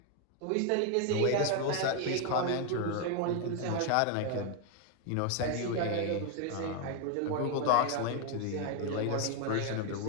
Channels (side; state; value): both; different; correlation 0.01